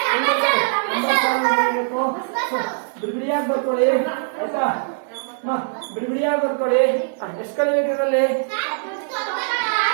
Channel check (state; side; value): silent; left; digital silence